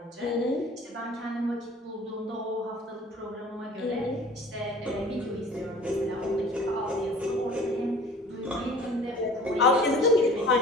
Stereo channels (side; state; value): both; normal; correlation 0.47